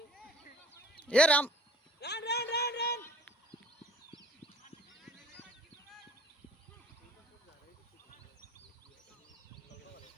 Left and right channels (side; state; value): both; normal; correlation 0.49